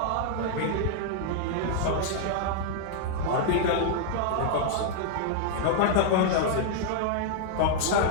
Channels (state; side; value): different; both; correlation -0.01